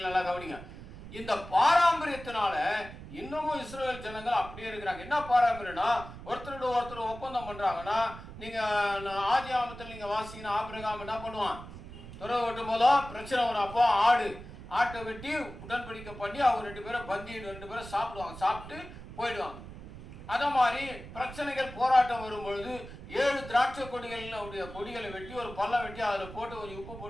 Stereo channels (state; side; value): noise; right; rumble, 14 dB below the sound